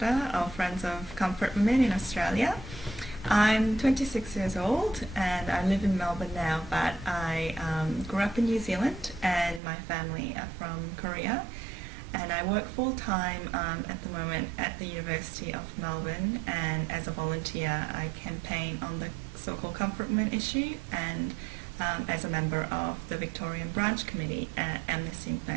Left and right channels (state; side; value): drops out; left; at 9.6 s